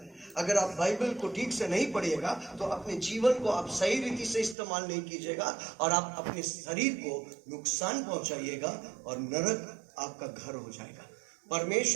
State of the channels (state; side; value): drops out; left; at 4.5 s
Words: अगर आप बाइबल को ठीक से नहीं पढ़िएगा तो अपने जीवन को आप सही रीति से इस्तेमाल नहीं कीजिएगा और आप अपने शरीर को नुकसान पहुंचाइएगा और नरक आपका घर हो जाएगा।